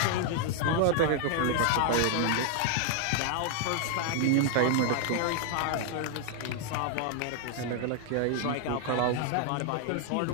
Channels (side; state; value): both; different; correlation 0.00